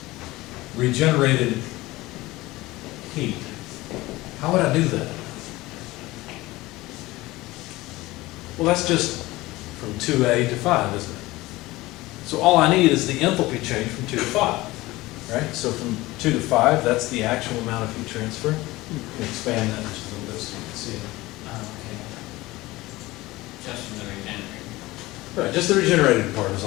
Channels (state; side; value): quieter; right; 19.4 dB